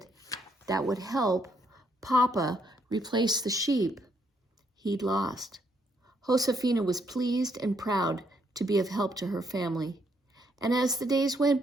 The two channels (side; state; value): both; normal; correlation 0.73